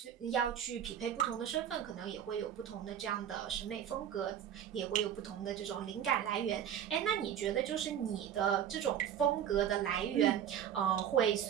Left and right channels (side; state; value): left; quieter; 9.5 dB